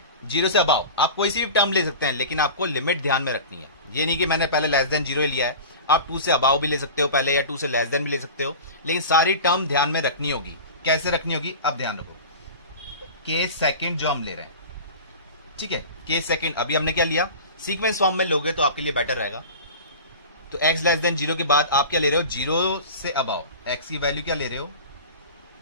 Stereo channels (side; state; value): both; inverted; correlation -0.34